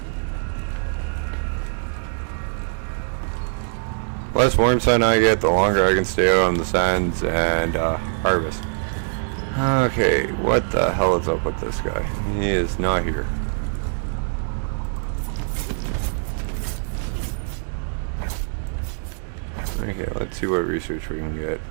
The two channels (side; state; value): left; silent; digital silence